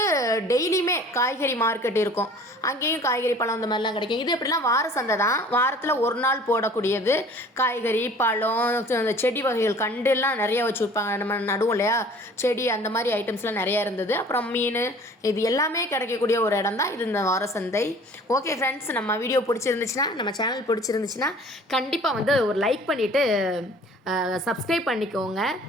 டெய்லியுமே காய்கறி மார்க்கெட் இருக்கும், அங்கேயும் காய்கறி பழம் இந்த மாதிரிலாம் கிடைக்கும். இது எப்படிலாம் வார சந்தை தான், வாரத்தில் ஒரு நாள் போடக்கூடியது. காய்கறி பழம், அந்த செடி வகைகள், கண்டுலாம் நிறைய வச்சு விற்பாங்க, நம்ம நடுவோம் இல்லையா செடி, அந்த மாதிரி ஐட்டம்ஸ்லாம் நிறையா இருந்தது. அப்புறம் மீன், இது எல்லாமே கிடைக்கக்கூடிய ஒரு இடம் தான் இது, இந்த வார சந்தை. ஓகே ஃப்ரெண்ட்ஸ், நம்ம வீடியோ பிடிச்சிருந்துச்சுன்னா, நம்ம சேனல் பிடிச்சிருந்துச்சுன்னா கண்டிப்பாக வந்து ஒரு லைக் பண்ணிவிட்டு சப்ஸ்கிரைப் பண்ணிக்கோங்க.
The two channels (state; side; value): normal; both; correlation 0.49